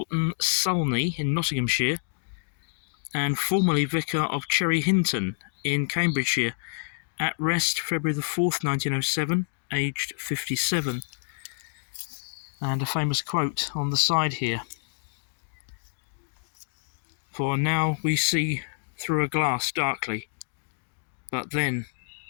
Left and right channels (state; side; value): silent; right; digital silence